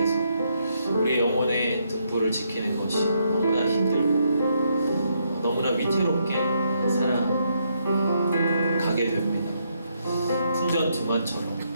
우리의 영혼의 등불을 지키는 것이 너무나 힘들고 너무나 위태롭게 살아가게 됩니다.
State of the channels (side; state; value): both; inverted; correlation -0.76